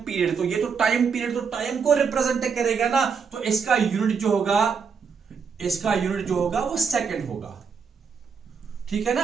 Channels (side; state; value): left; quieter; 6.0 dB